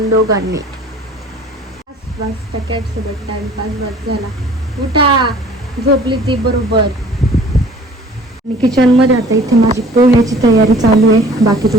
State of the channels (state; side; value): normal; both; correlation 0.50